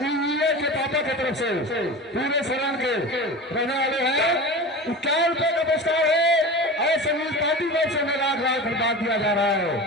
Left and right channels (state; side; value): normal; both; correlation 0.31